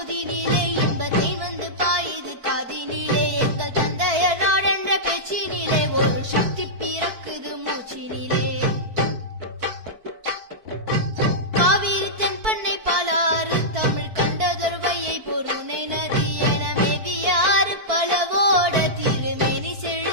இன்பத்தை வந்து பாயுது காதினிலே. எங்கள் தந்தையர் நாடென்ற பேச்சினிலே ஒரு சக்தி பிறக்குது மூச்சினிலே. காவிரி தென்பண்ணை பாலாறு தமிழ் கண்டதொரு வையை பொருணை நதி என மேவியாறு பலவோட திருமேனி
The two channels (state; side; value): late; left; 4.5 ms